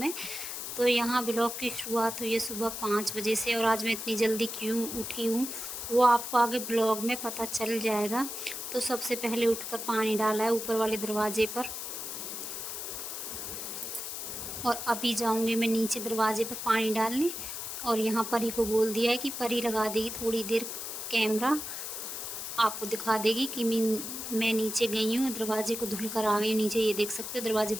तो यहाँ ब्लॉग की शुरुआत हुई है सुबह 5 बजे से, और आज मैं इतनी जल्दी क्यों उठी हूँ वो आपको आगे ब्लॉग में पता चल जाएगा। तो सबसे पहले उठकर पानी डाला है ऊपर वाले दरवाजे पर, और अभी जाऊँगी मैं नीचे दरवाजे पर पानी डालने। और यहाँ परी को बोल दिया है कि परी लगा देगी थोड़ी देर कैमरा, आपको दिखा देगी कि मैं नीचे गई हूँ, दरवाजे को धुल कर आ गई हूँ नीचे। ये देख सकते हो दरवाजे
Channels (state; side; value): noise; left; hiss, 6 dB below the sound